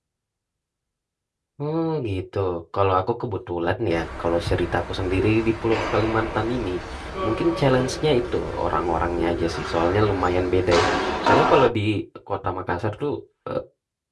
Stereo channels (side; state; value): both; identical; correlation 1.00